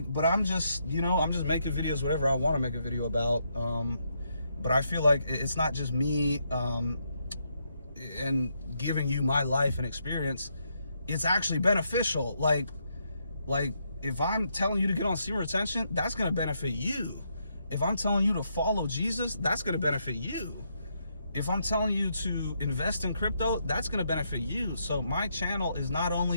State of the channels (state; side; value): inverted; both; correlation -0.78